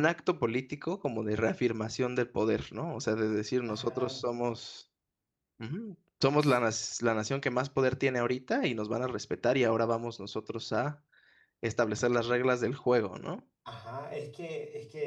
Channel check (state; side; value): identical; both; correlation 1.00